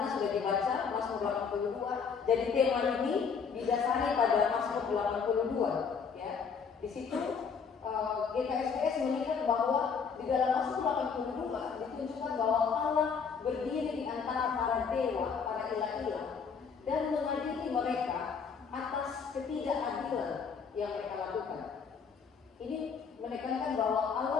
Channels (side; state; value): right; quieter; 6.0 dB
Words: sudah dibaca Mazmur 82. Jadi tema ini didasari pada Mazmur 82. Ya, di situ GKSBS melihat bahwa di dalam Mazmur 82 ditunjukkan bahwa Allah berdiri di antara para dewa, para ilah-ilah, dan mengadili mereka atas ketidakadilan yang mereka lakukan. Ini menekankan bahwa